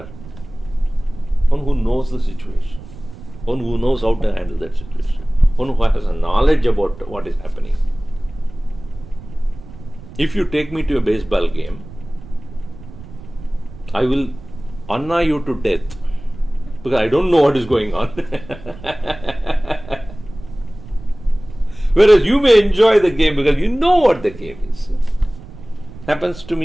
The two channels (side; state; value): right; noise; rumble, 16 dB below the sound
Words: One who knows the situation. One who knows how to handle that situation. One who has a knowledge about what is happening. If you take me to a baseball game, I will annoy you to death because I don't know what is going on. Whereas you may enjoy the game because you know what the game is. Happens to